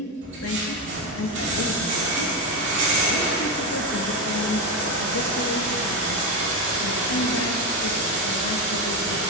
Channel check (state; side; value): normal; both; correlation 0.12